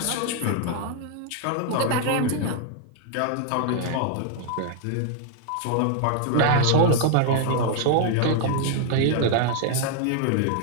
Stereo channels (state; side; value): different; both; correlation 0.00